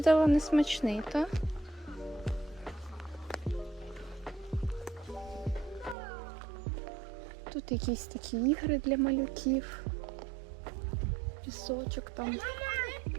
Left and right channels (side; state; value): left; drops out; at 6.0 s